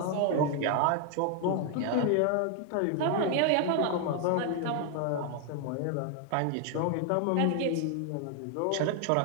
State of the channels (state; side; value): different; both; correlation 0.00